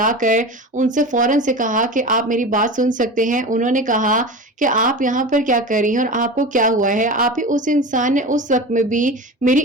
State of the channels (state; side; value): normal; both; correlation 0.29